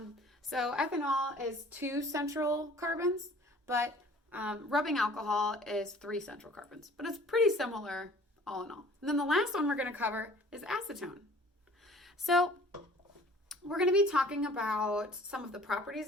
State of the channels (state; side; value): normal; both; correlation 0.50